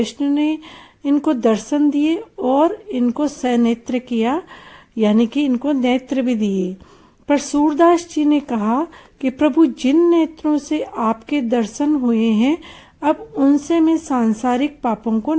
ने इनको दर्शन दिए और इनको सनेत्र किया, यानी कि इनको नेत्र भी दिए। पर सूरदास जी ने कहा कि प्रभु, जिन नेत्रों से आपके दर्शन हुए हैं, अब उनसे मैं सांसारिक पापों को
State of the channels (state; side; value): identical; both; correlation 1.00